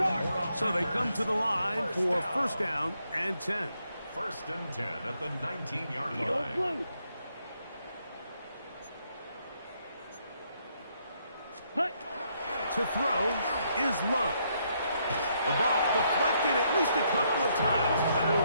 So they come to the line for 1st down and 10. 1st and 10 at the 19-yard Yellow line. blue. Hut. To throw is Love. The ball deflected at least a couple of times, and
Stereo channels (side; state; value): both; inverted; correlation -0.74